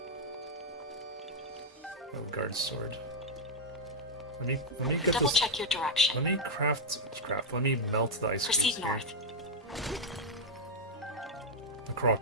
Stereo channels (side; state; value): both; normal; correlation -0.02